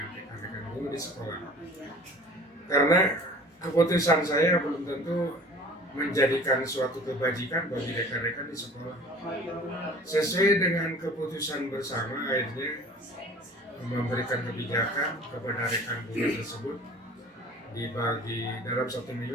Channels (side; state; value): both; normal; correlation 0.45